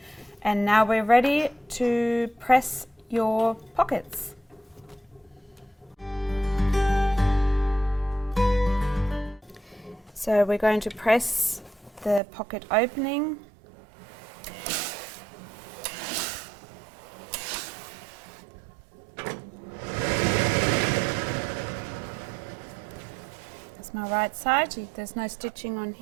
And now we're ready to press your pockets. So we're going to press the pocket opening. My right side, there's no stitching on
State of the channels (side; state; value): left; drops out; at 12.2 s